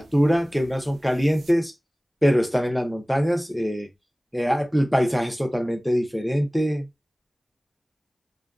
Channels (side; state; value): both; normal; correlation 0.98